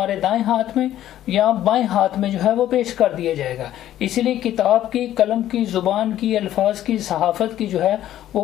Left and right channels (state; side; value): quieter; right; 12.5 dB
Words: دائیں ہاتھ میں یا بائیں ہاتھ میں جو ہے وہ پیش کر دیا جائے گا. اسی لیے کتاب کی, قلم کی, زبان کی, الفاظ کی, صحافت کی جو ہے